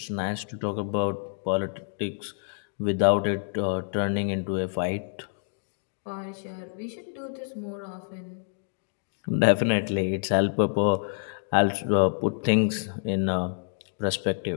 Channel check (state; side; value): silent; right; digital silence